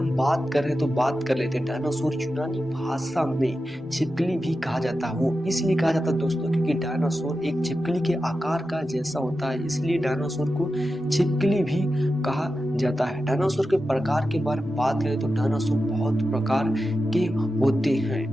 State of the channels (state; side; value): normal; both; correlation 0.91